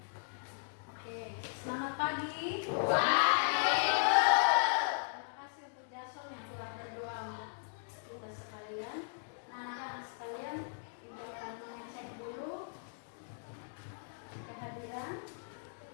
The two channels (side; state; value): right; silent; digital silence